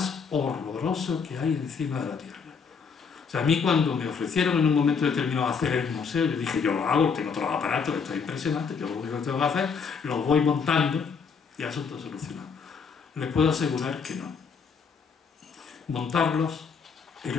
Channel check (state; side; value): quieter; right; 5.8 dB